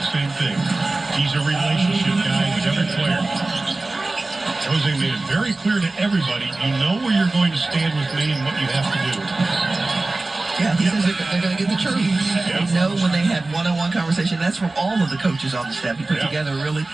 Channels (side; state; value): left; quieter; 3.1 dB